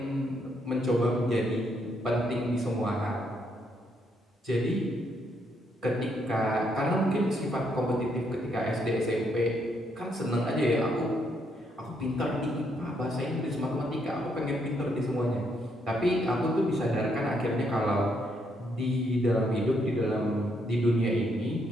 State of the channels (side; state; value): both; normal; correlation 0.74